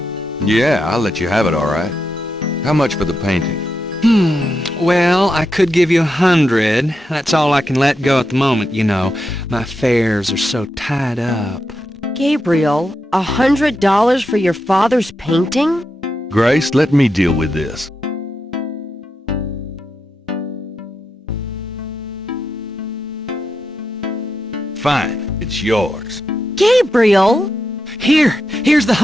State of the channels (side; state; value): both; normal; correlation 0.86